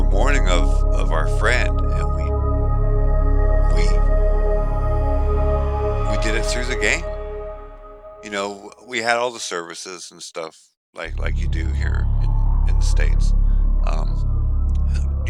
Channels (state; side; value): identical; both; correlation 1.00